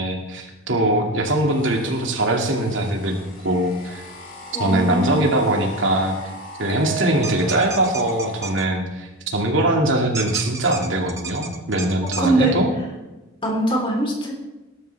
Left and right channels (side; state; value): both; normal; correlation 0.26